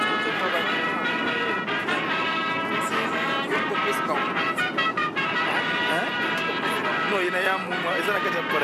no ina ya mumwa ezana kaja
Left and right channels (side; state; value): both; identical; correlation 1.00